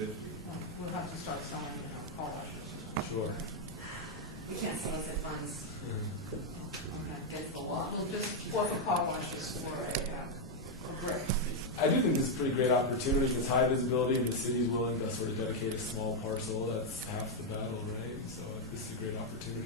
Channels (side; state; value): both; normal; correlation 0.00